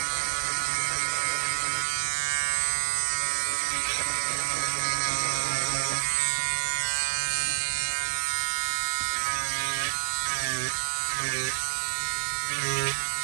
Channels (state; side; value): silent; left; digital silence